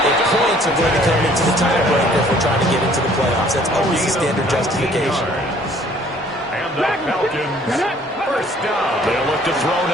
if points are going to come into the tiebreaker if we're trying to get into the playoffs. That's always the standard justification. And the Falcons, 1st down. They'll look to throw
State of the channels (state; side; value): normal; both; correlation 0.57